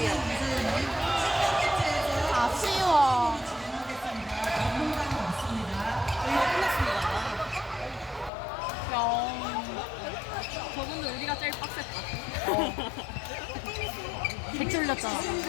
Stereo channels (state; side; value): drops out; right; at 8.3 s